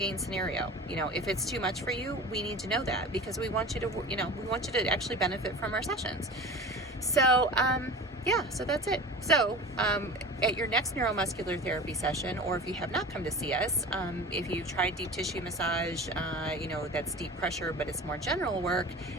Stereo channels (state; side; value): normal; both; correlation 0.36